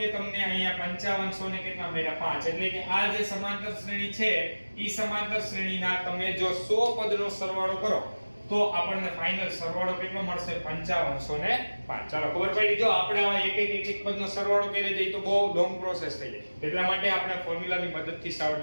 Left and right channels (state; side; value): inverted; both; correlation -1.00